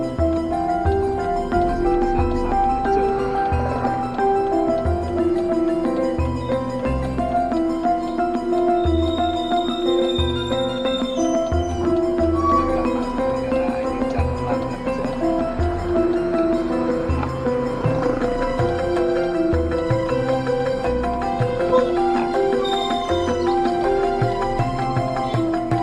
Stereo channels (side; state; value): both; identical; correlation 1.00